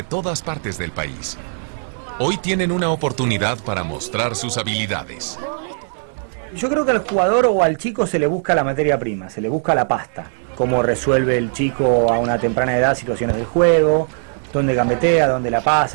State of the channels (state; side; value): silent; left; 66 dB below the other